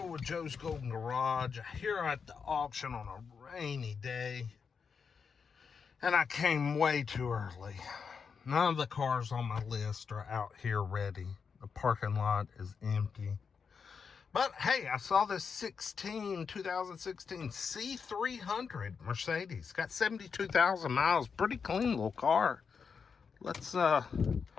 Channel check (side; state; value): right; quieter; 5.9 dB